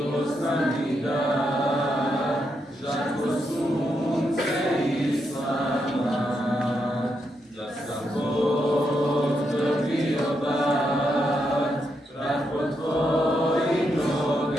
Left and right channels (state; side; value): normal; both; correlation 0.81